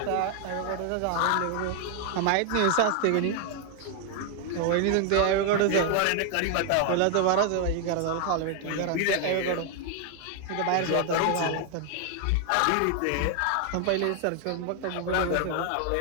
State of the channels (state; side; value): different; both; correlation 0.00